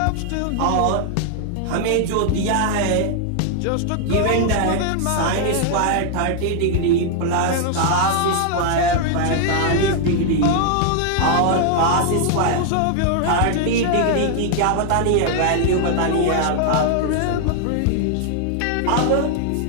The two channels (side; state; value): both; different; correlation 0.00